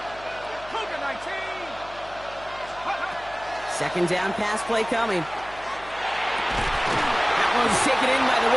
Second down pass play coming. That one's taken in by the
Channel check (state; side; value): noise; left; hum, 20 dB below the sound